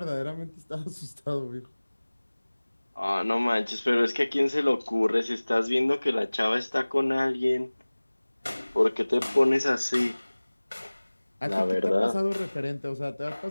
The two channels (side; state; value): both; inverted; correlation -1.00